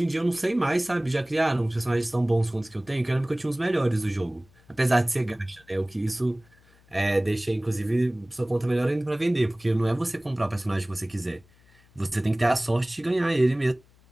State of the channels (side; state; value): left; noise; hum, 30 dB below the sound